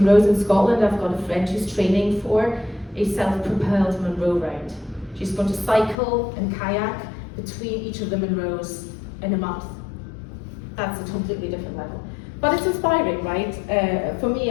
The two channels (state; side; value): drops out; right; at 6.0 s